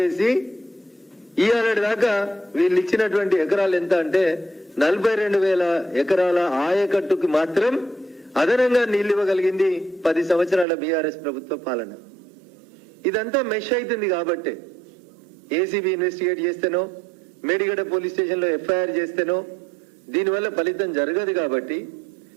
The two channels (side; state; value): left; drops out; at 10.7 s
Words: ఇయ్యాలటి దాకా వీళ్ళు ఇచ్చినటువంటి ఎకరాలు ఎంత అంటే 42,000 ఎకరాల ఆయకట్టుకు మాత్రం అదనంగా నీళ్లు ఇవ్వగలిగింది 10 సంవత్సరాల బీఆర్ఎస్ ప్రభుత్వ పాలన. ఇదంతా మెష్ అవుతుంది కాబట్టి ఏసీబీ ఇన్వెస్టిగేట్ చేస్తేనో, మేడిగడ్డ పోలీస్ స్టేషన్ లో ఎఫ్ఐఆర్ చేస్తేనో దీనివల్ల ఫలితం జరగదు. కాబట్టి